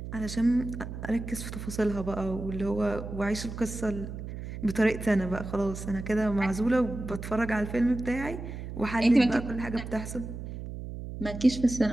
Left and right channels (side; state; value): right; noise; hum, 8 dB below the sound